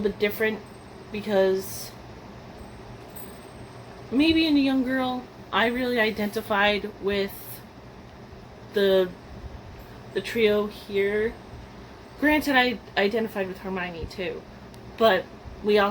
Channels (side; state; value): both; identical; correlation 1.00